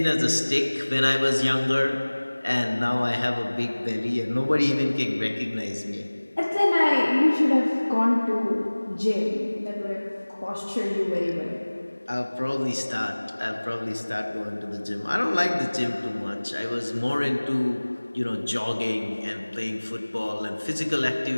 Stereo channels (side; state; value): both; inverted; correlation -1.00